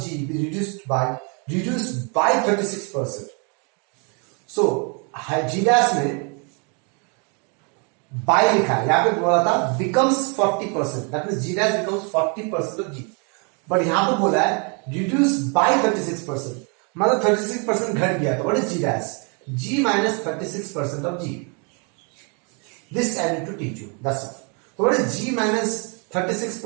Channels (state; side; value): quieter; left; 35.5 dB